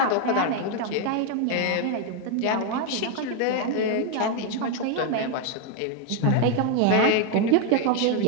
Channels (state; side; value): different; both; correlation 0.01